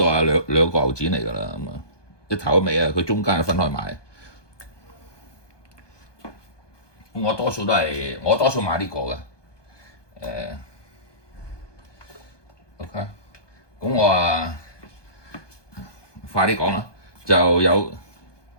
兩個牛展嚟㗎啦。一頭一尾佢中間係分開買。我多數買呢個嘅。OK，快啲講啦，就有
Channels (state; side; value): late; right; 1.2 ms